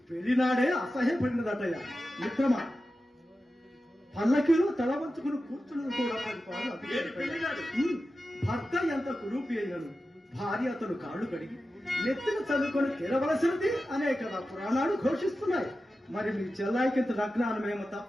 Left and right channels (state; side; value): normal; both; correlation 0.93